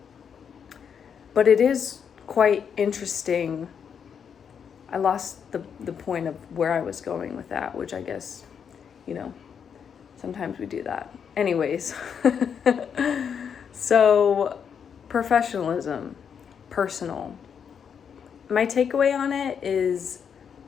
But it is quite interesting. I lost the point of where I was going with that, which I guess, sometimes we do that. Anyways, so professionalism, personal. My takeaway on it is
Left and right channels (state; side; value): quieter; right; 7.3 dB